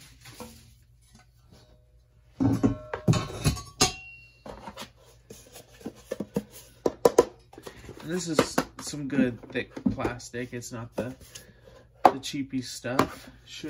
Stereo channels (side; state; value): both; identical; correlation 1.00